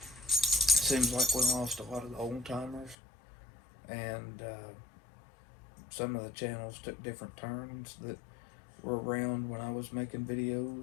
Seems like we lost a lot of the old timers, and some of the channels took different turns that were around when I was making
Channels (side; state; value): right; drops out; at 3.0 s